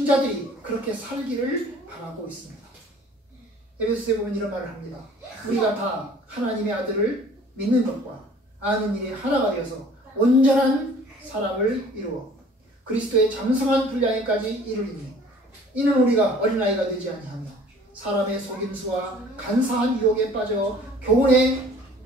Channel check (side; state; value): both; normal; correlation 0.52